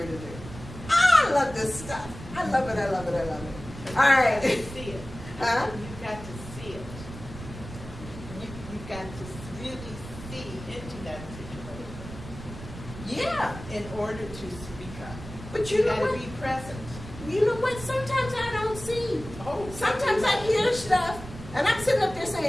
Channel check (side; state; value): right; noise; rumble, 13 dB below the sound